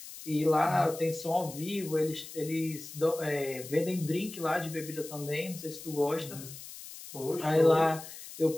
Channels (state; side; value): noise; left; hiss, 13 dB below the sound